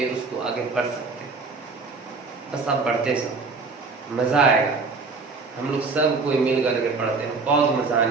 उसको आगे बढ़ सकते हैं। बस आप बढ़ते सब, मज़ा आएगा। हम लोग सब कोई मिल करके पढ़ते हैं, बहुत मज़ा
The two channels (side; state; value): left; quieter; 4.2 dB